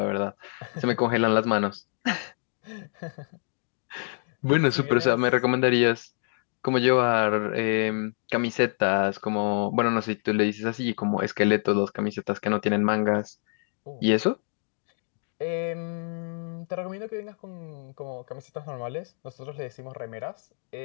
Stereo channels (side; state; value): right; silent; 60 dB below the other